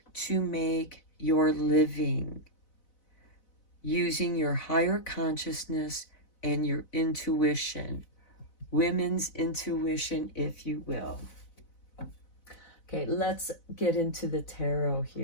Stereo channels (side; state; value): right; late; 4.0 ms